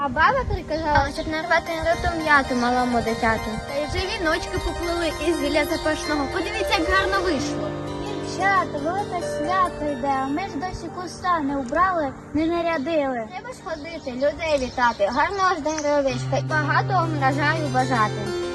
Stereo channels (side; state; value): both; identical; correlation 1.00